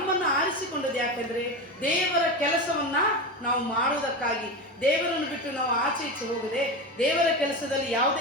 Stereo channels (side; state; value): both; normal; correlation 0.21